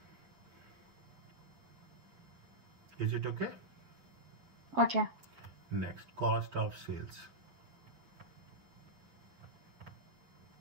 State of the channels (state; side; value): late; left; 7.4 ms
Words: Is it okay? Okay. Next, cost of sales.